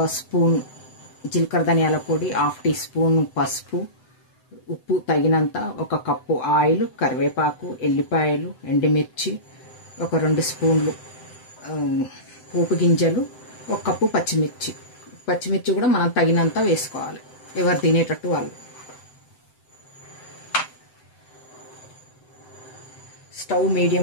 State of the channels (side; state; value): right; late; 7.9 ms